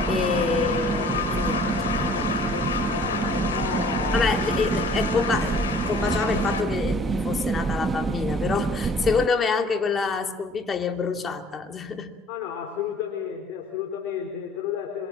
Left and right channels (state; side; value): normal; both; correlation 0.53